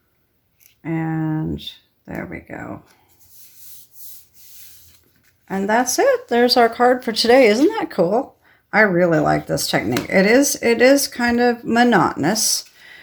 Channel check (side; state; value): both; identical; correlation 1.00